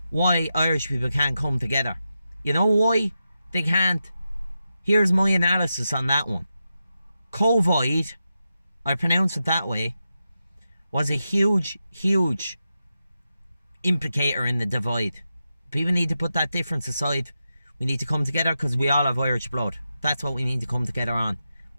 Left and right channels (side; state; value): both; inverted; correlation -0.89